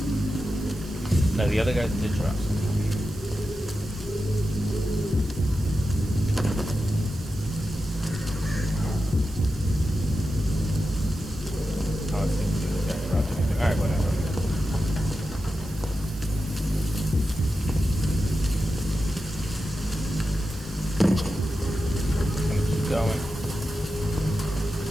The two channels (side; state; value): right; noise; hiss, 19 dB below the sound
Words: Now the other guys did drop something. Alright, whatever. Just gonna keep going.